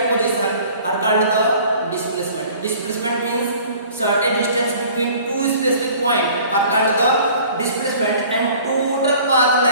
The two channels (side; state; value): both; inverted; correlation -0.49